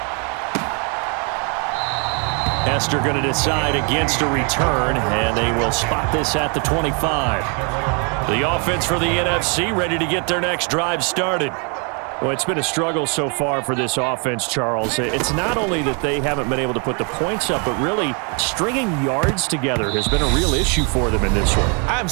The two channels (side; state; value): left; quieter; 36.9 dB